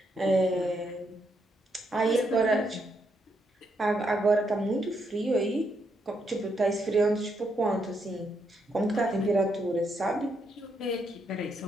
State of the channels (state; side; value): normal; both; correlation 0.78